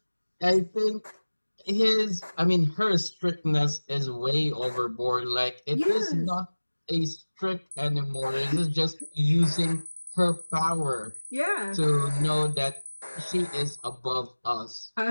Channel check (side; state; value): both; inverted; correlation -1.00